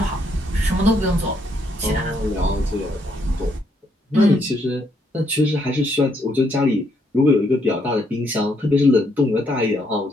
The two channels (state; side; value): normal; both; correlation 0.74